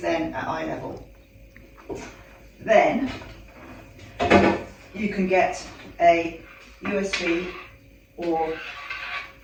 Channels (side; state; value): both; identical; correlation 1.00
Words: then at eye level. Then you can get a USB or